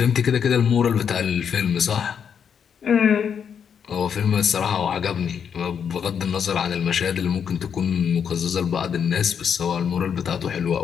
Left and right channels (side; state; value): right; quieter; 7.5 dB